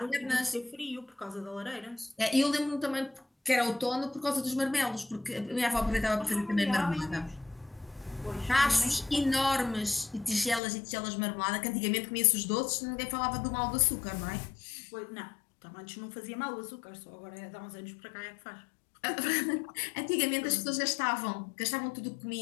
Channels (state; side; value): drops out; right; at 10.6 s